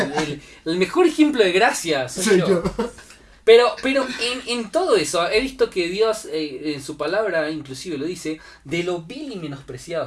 El mejor ejemplo de gracia soy yo. Pero en todo eso, he visto que Dios en su palabra inclusive lo dice, de lo vil y menospreciado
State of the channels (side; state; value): both; identical; correlation 1.00